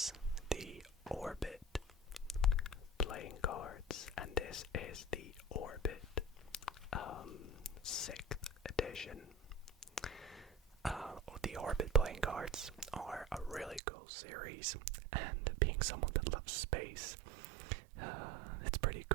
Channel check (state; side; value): drops out; left; at 13.8 s